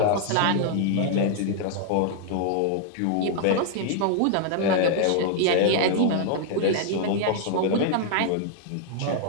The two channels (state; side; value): different; both; correlation -0.01